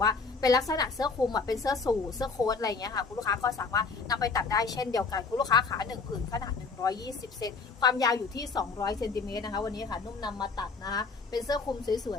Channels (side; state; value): right; quieter; 4.5 dB